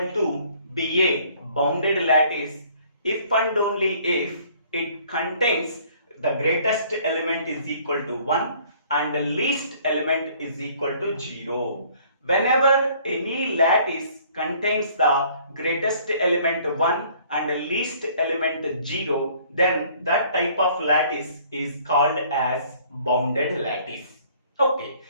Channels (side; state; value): both; inverted; correlation -0.57